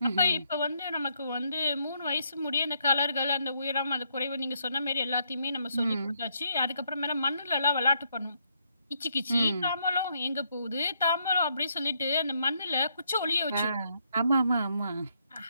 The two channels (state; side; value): inverted; both; correlation -0.74